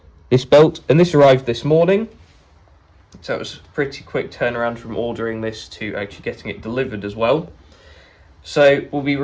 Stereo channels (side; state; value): both; identical; correlation 1.00